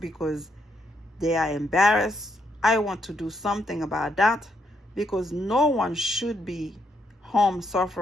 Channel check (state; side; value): normal; both; correlation 0.76